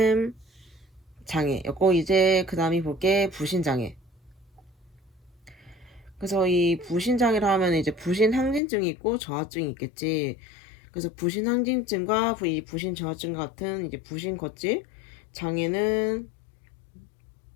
장애였고 이제 그 다음이 볼게 부신장애. 그래서 이 부신장애라 하면 이제 부신항진증이 있고 저하증이 있겠지. 그래서 부신항진증과 이 부신저하증 같은 이제 부신거질 장애는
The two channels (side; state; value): right; drops out; at 8.6 s